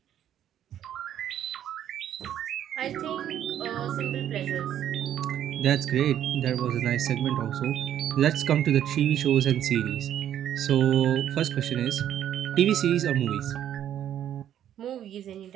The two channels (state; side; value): quieter; left; 10.6 dB